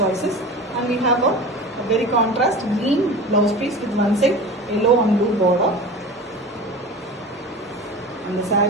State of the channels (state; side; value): normal; both; correlation 0.34